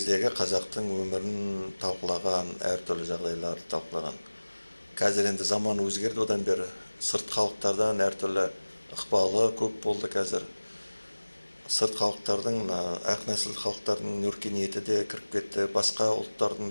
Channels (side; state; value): both; inverted; correlation -1.00